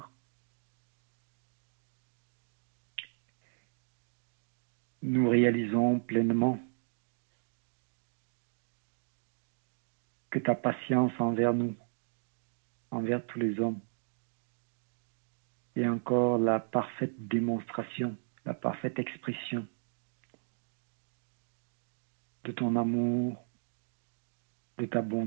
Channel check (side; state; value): left; silent; digital silence